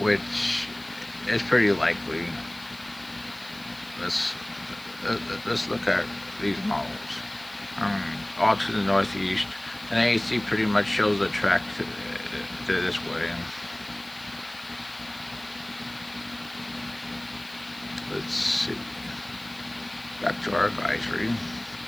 which is pretty likely. Let's look at these models. All to the northeast, and AHC pretty much shows the track to this way. Let's see. Back to our advisory.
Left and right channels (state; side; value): noise; left; hiss, 22 dB below the sound